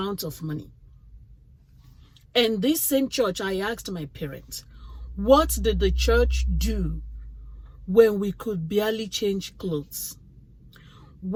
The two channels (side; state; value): both; identical; correlation 1.00